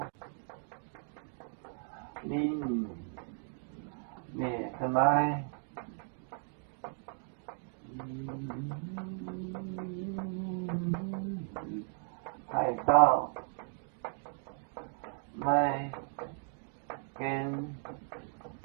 您列个来。海盗买跟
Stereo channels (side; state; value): left; silent; 54 dB below the other